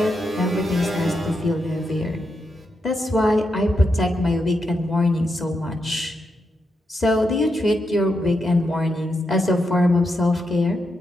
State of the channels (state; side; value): normal; both; correlation 0.84